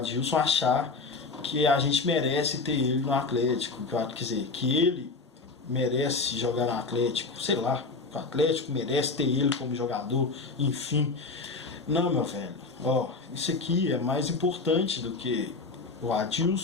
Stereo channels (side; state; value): right; quieter; 4.0 dB